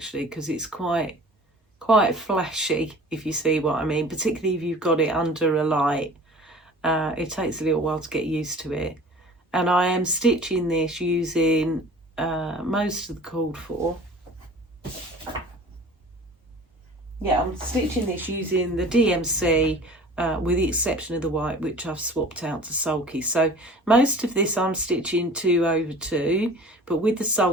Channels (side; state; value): both; normal; correlation 0.44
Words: because it's quite flashy, if you see what I mean, particularly if you've got it under a light. It takes a little while to get used to it. And I am stitching this using most of the called for. Yeah, I'm stitching this using the DMC with the exception of the white, which I've swapped out to sulky. So most of this I'm stitching 2/2, but with the